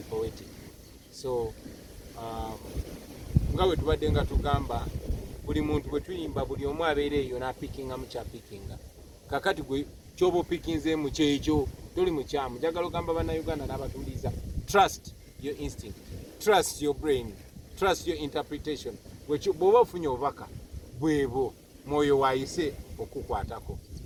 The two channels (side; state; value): both; identical; correlation 1.00